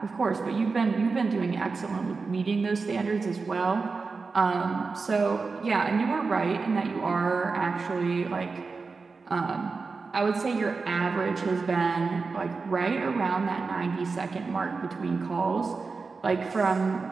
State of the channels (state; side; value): quieter; left; 4.4 dB